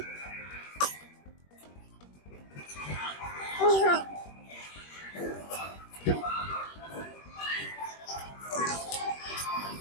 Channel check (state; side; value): late; right; 21 ms